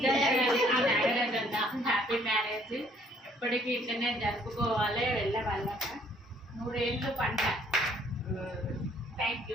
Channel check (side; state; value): both; normal; correlation 0.63